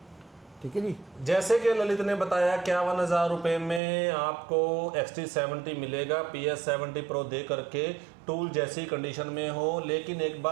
ठीक है जी। जैसे कि ललित ने बताया 51,000 रुपये में आपको XT70 मिलेगा PS70 Pro दे करके, टूल जैसी कंडीशन में हो। लेकिन एक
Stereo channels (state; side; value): drops out; left; at 3.8 s